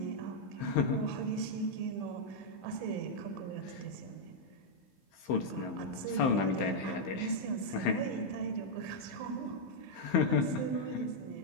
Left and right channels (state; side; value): late; right; 15 ms